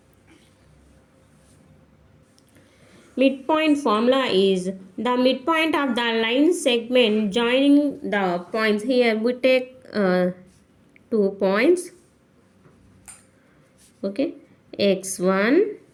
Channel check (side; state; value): both; identical; correlation 1.00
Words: Midpoint formula is the midpoint of the line segment joining the points. Here we take 2 points, okay, x1